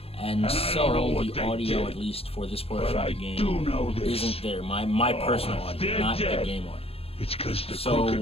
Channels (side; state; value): right; late; 0.28 ms